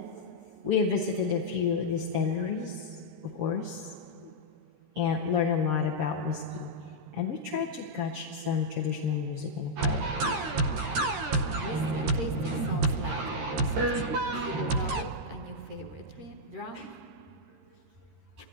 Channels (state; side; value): late; left; 13 ms